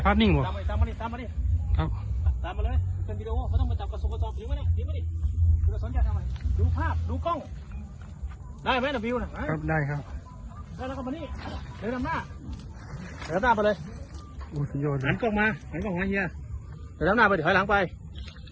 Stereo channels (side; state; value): both; identical; correlation 1.00